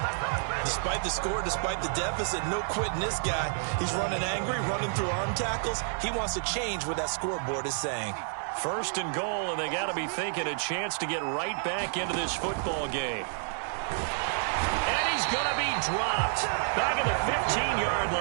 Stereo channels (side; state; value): left; silent; digital silence